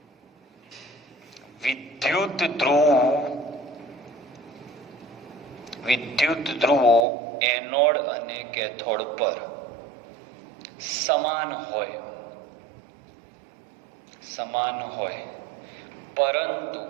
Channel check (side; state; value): left; drops out; at 7.1 s